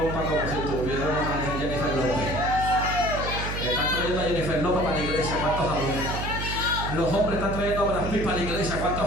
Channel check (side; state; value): right; noise; hum, 4 dB below the sound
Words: como si tuviéramos a Jennifer López. Están trayendo a Jennifer López para la iglesia. ¿Cuántos adoran? Los hombres están trayendo a Brad Pitt para la iglesia.